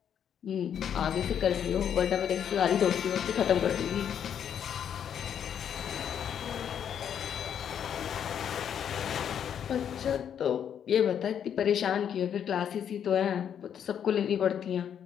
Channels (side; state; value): right; quieter; 8.7 dB